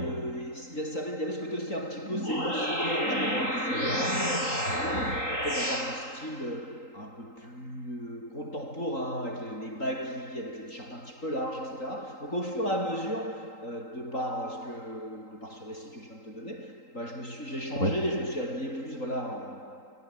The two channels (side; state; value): right; late; 3.8 ms